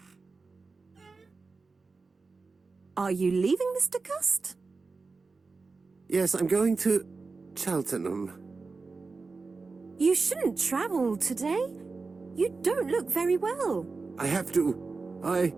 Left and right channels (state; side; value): quieter; left; 4.1 dB